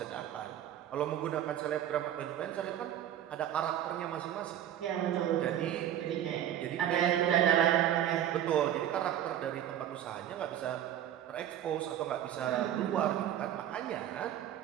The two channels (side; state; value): left; quieter; 11.1 dB